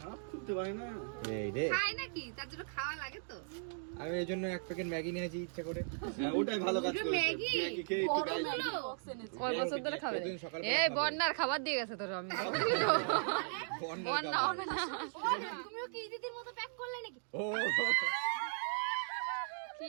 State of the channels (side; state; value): left; silent; digital silence